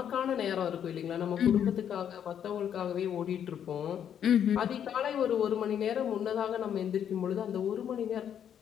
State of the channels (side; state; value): right; quieter; 9.1 dB